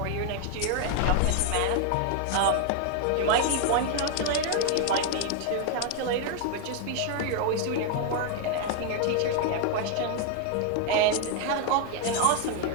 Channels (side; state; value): both; different; correlation 0.01